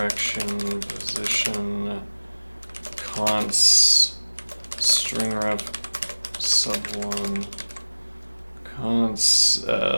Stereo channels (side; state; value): both; inverted; correlation -1.00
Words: position const string ref sub1 const